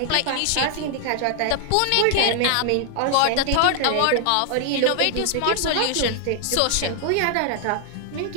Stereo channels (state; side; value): different; both; correlation 0.00